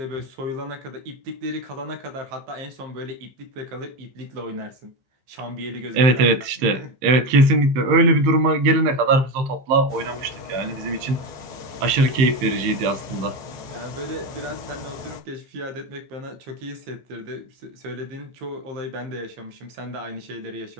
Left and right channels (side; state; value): left; late; 15 ms